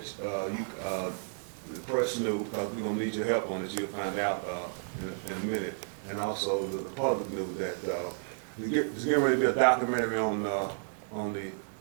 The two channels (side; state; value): left; silent; digital silence